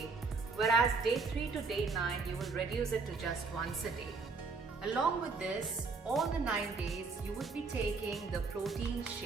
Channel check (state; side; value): quieter; left; 4.3 dB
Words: whereas day 3 to day 9, you will reduce it to just once a day. Along with this, all the 9 days, you would be taking the protein